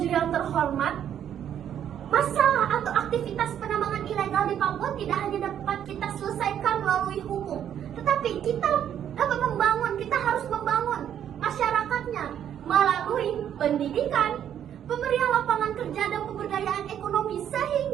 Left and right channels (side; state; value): left; quieter; 9.7 dB